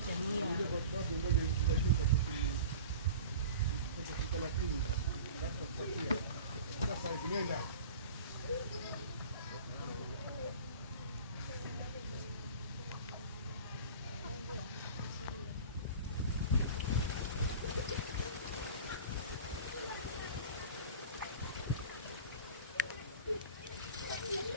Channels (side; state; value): both; inverted; correlation -0.38